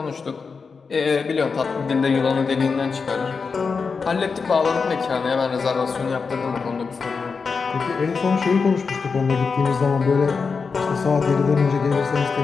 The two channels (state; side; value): quieter; right; 5.1 dB